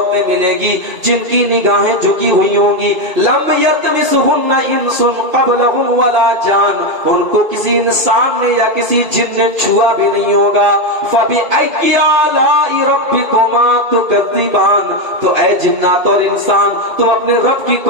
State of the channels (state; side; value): late; left; 2.5 ms